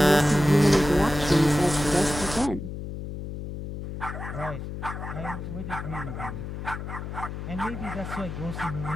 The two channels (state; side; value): noise; left; hum, 7 dB below the sound